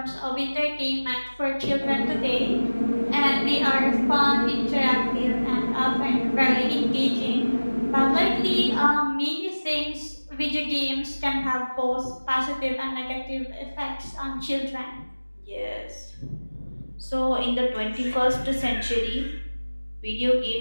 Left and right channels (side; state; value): both; inverted; correlation -1.00